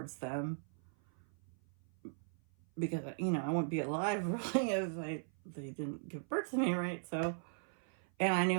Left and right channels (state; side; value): silent; left; 52 dB below the other